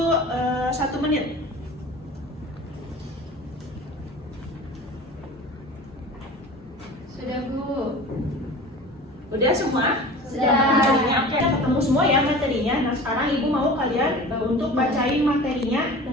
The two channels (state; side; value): normal; both; correlation 0.38